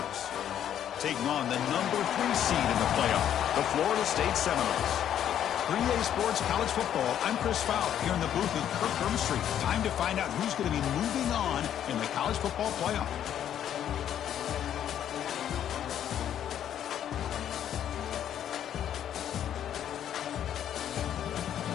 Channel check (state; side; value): quieter; right; 10.2 dB